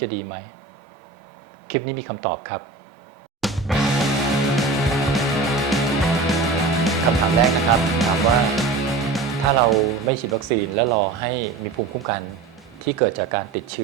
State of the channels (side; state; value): left; quieter; 4.1 dB